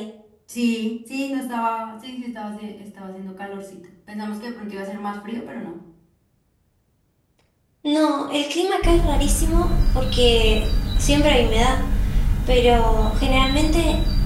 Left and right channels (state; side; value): identical; both; correlation 1.00